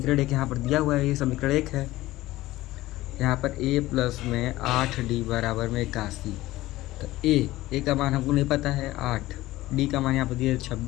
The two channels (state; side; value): quieter; right; 17.1 dB